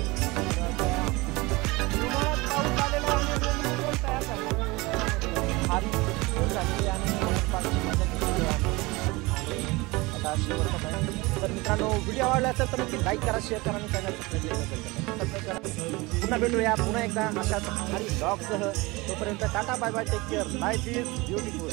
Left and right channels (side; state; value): left; quieter; 23.3 dB